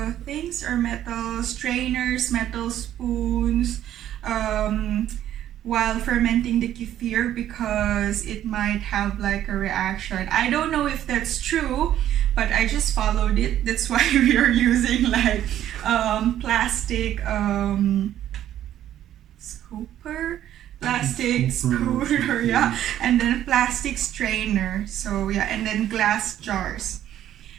things, or metal strainers, metal spoons, while fermenting the kefir, because it might have like a reaction. I don't know if that's true, but I just followed it. That's why we are using like plastic scooper, plastic scooter, yeah, and then plastic strainer. So yeah, and then glass jars.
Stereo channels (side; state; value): left; quieter; 11.7 dB